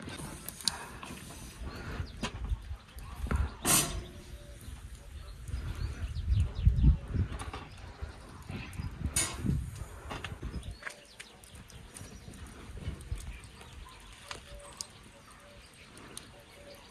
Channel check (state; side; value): identical; both; correlation 1.00